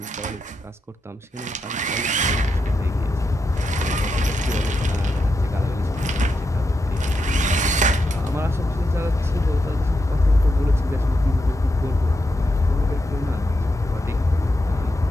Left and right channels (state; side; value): normal; both; correlation 0.86